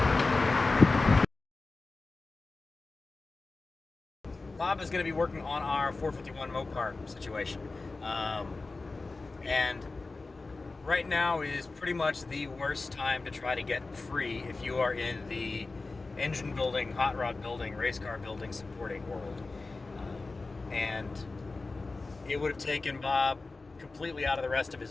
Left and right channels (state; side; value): quieter; right; 3.6 dB